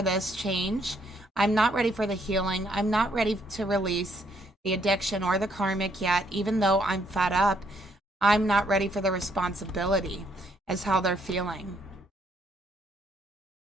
this change. I'm not ready for the healing. I'm not ready to release the addiction or the karmic yet, even though I'm fed up. I'm not ready for the responsibility, is how they're feeling.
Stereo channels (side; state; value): both; normal; correlation 0.70